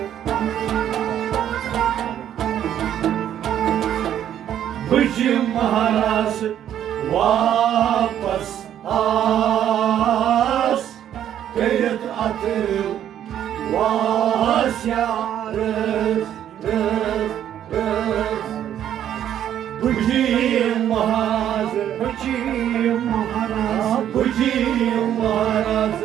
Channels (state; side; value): quieter; left; 10.5 dB